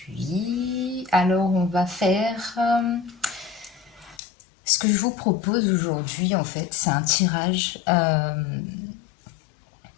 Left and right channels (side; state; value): right; drops out; at 4.2 s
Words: alors on va faire... ce que je vous propose aujourd'hui, en fait, c'est un tirage